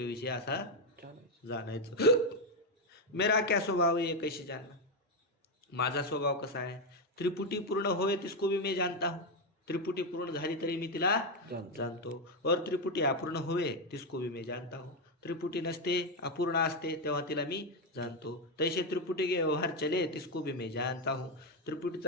विषय असा जाणायचं. मेरा क्या स्वभाव है ये कैसे जानना? माझा स्वभाव कसा आहे? त्रिपुटी पूर्ण होय तिसको भी मैं जानता हूँ. त्रिपुटी पूर्ण झाली तरी मी तिला जाणतो. और त्रिपुटी अपूर्ण होवे तिसको भी मैं जानता हूँ. त्रिपुटी नसते, अपूर्ण असते तेव्हा तिला मी जाणतो. तैसे त्रिपुटी के व्यवहार चले तिसको भी मैं जानता हूँ.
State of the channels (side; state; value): both; normal; correlation 0.06